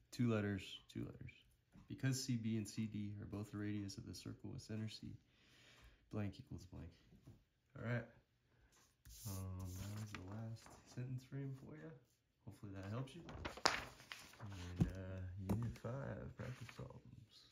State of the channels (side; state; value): both; identical; correlation 1.00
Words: 2 letters, 2 letters. Because CB and CD are both the radius of the circle with center C, blank equals blank. All right. That was the last sentence frame for you. Hopefully that helps you. And Unit 5 practice problems